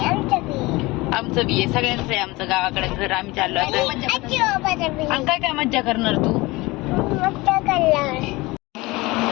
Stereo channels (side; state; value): right; quieter; 22.1 dB